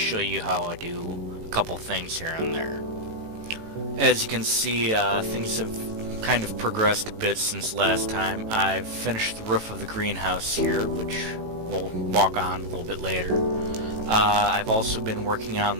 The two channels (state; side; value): late; left; 18 ms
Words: you how I do a couple things here and there. As you can see, things have kind of progressed a bit since last time. I've finished the roof of the greenhouse here, which we'll walk on a little bit later. I've also been working